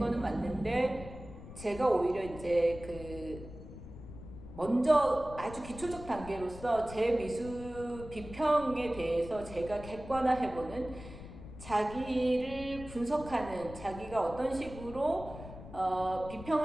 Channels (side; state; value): left; noise; rumble, 14 dB below the sound